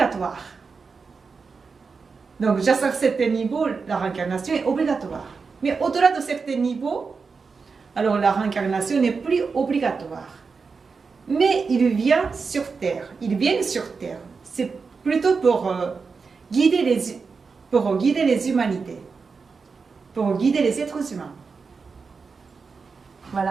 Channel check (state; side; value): quieter; left; 4.9 dB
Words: Donc, jusqu'à certains niveaux, la réincarnation est obligatoire. Mais au-delà de certains niveaux, alors la réincarnation n'est plus obligatoire. Mais ils viennent sur Terre. C'est plutôt pour guider les humanités, pour guider les êtres humains.